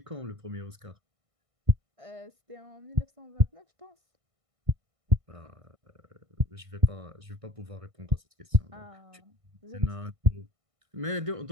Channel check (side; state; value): left; late; 1.6 ms